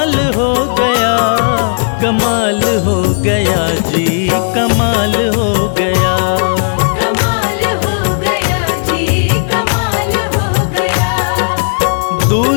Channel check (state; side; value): silent; right; digital silence